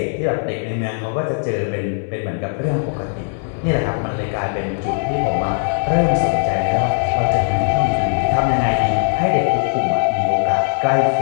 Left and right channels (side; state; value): right; silent; 67 dB below the other